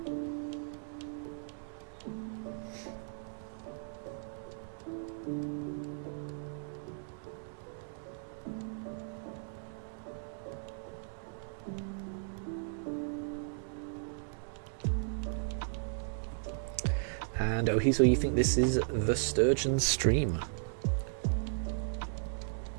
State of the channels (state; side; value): silent; left; digital silence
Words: And Ohiso, you think this is the Sturgeon stream?